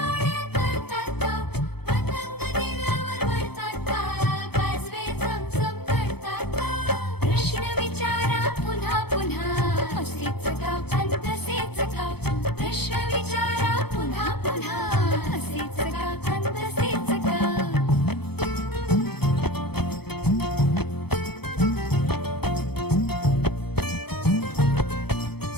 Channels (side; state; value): right; late; 0.97 ms